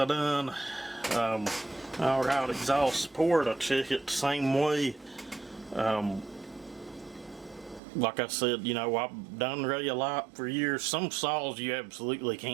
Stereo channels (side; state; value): left; drops out; at 7.8 s